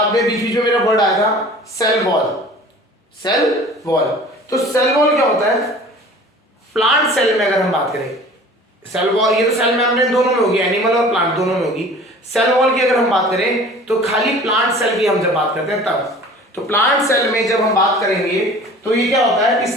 में बीच बीच में मेरा वर्ड आया था, सेल वॉल। Cell wall. तो सेल वॉल क्या होता है? प्लांट सेल में अगर हम बात करें, सेल वॉल, ये तो सेल मेम्ब्रेन दोनों में होगी, एनिमल और प्लांट दोनों में होगी। सेल वॉल की अगर हम बात करें तो खाली प्लांट सेल की हम जब बात करते हैं तब, तो प्लांट सेल में जब हम बात करेंगे तो ये क्या होता है कि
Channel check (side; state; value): both; normal; correlation 0.44